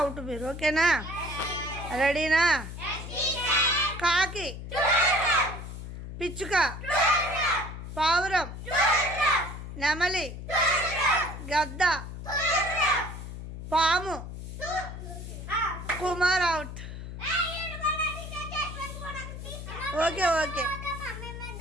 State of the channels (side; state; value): left; noise; hum, 9 dB below the sound